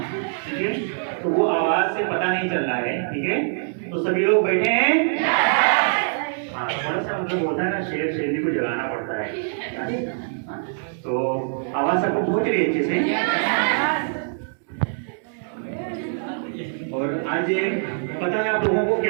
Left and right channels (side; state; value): left; silent; digital silence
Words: ठीक है, तो वो आवाज से पता नहीं चल रहा है। ठीक है, तो सभी लोग बैठे हैं। हाँ, थोड़ा सा मतलब होता है ना, शेर शेरनी को जगाना पड़ता है। तो आवाज सबको पहुंच रही है अच्छे से। और आज पता है आप लोगों को